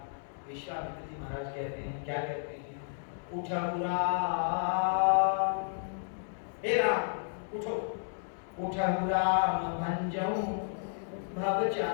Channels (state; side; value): silent; right; digital silence